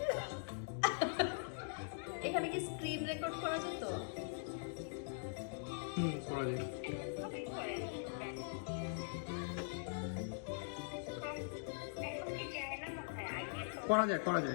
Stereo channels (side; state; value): right; silent; digital silence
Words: এখানে কি স্ক্রিন রেকর্ড করা যেত? করা যায়। করা